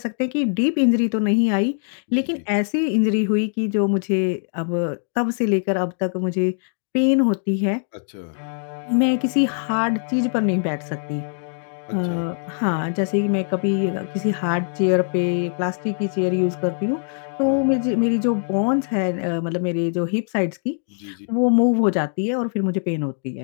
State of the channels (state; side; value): silent; right; 64 dB below the other